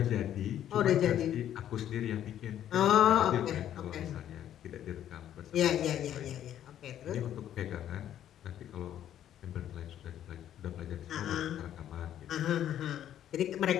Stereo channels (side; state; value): right; quieter; 11.0 dB